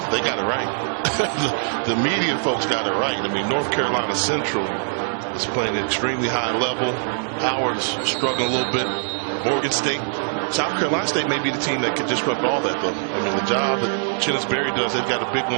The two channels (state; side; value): silent; left; digital silence